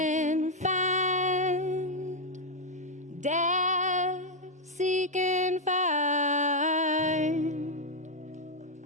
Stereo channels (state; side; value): normal; both; correlation 0.01